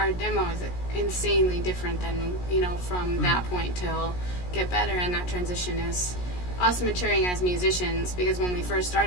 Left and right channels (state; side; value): late; right; 17 ms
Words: demo is insanely different than from that point till Get Better, and that transition is us maturing as musicians, because when we first